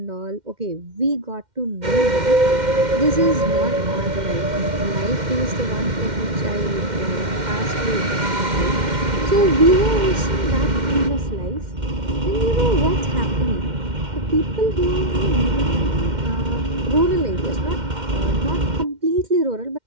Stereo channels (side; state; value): left; late; 2.1 ms